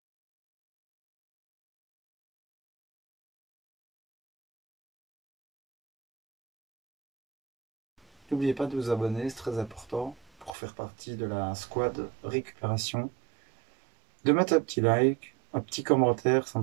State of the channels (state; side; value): drops out; left; at 10.5 s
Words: n'oubliez pas de vous abonner, c'est très important pour faire partie de la squad récupération. De mettre un petit like, un petit commentaire, ça